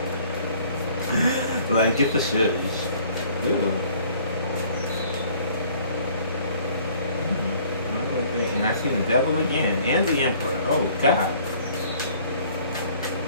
Like, get the shush. Ooh. And I see the devil again. And the emperor. Oh, God.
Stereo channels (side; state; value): both; inverted; correlation -0.56